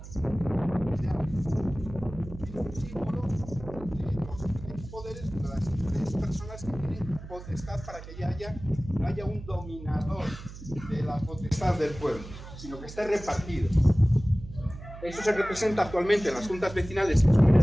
es un símbolo de los diferentes poderes de las diferentes personas que tienen potestad para que no haya un dominador de la potestad del pueblo, sino que esté repartido. Eso se representa actualmente en las juntas vecinales que son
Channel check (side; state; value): right; noise; hum, 13 dB below the sound